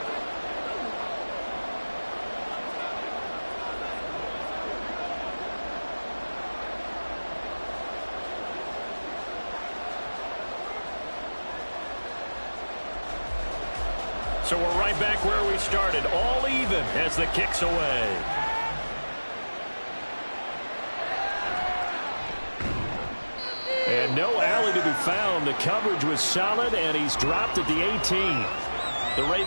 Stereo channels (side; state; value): both; inverted; correlation -1.00